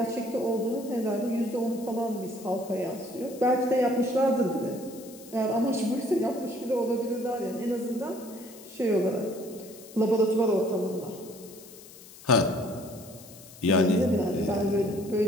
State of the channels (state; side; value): noise; left; hiss, 19 dB below the sound